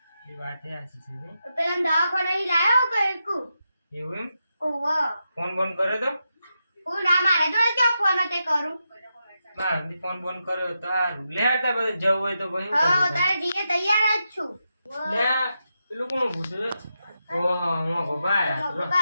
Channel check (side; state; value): both; inverted; correlation -0.87